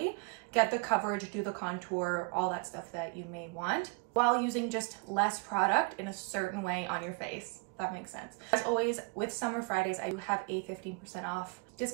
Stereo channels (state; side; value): quieter; left; 29.6 dB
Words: get the coverage, do the contour, all that stuff that you may want, while using just less product in a certain way on your face. That makes sense. As always, with Summer Fridays, I do have a 15% off